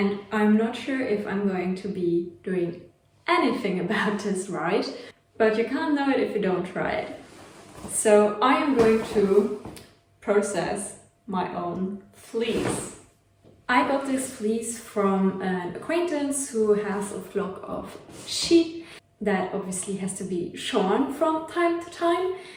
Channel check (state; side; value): identical; both; correlation 1.00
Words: I'm not sure if I'm going to be doing anything about this right, but you can't know it if you don't try it. So I am going to process my own fleece. I got this fleece from an acquaintance who has a flock of sheep that obviously has to be shorn from time to time,